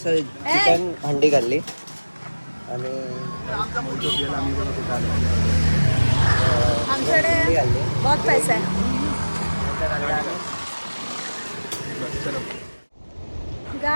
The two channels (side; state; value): both; inverted; correlation -1.00